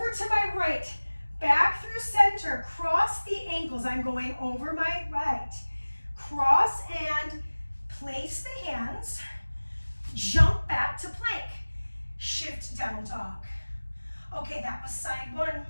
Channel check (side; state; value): both; inverted; correlation -1.00